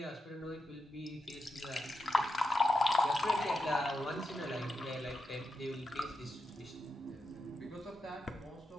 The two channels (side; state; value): both; normal; correlation 0.87